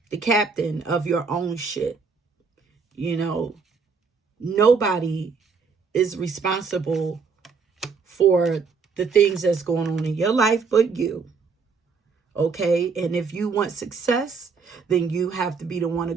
captain of your own shit, you know. nobody is responsible for the things that's going on in your life but you. Okay? And if you want success, then you have to be the one to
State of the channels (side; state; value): left; quieter; 5.2 dB